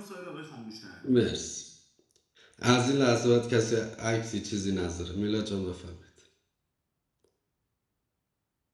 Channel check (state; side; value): identical; both; correlation 1.00